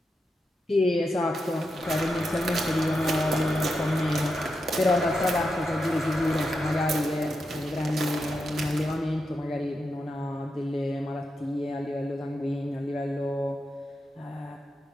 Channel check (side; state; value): both; normal; correlation 0.86